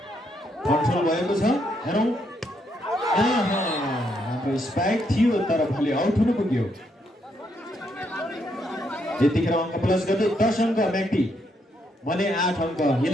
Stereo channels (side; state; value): both; normal; correlation 0.76